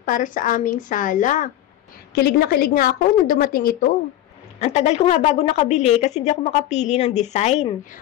para sa aming sala. Kilig na kilig nga ako nung dumating ito. Ang tagal ko nga bago nakabili kasi hindi ako makapili ng design.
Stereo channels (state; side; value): quieter; right; 13.1 dB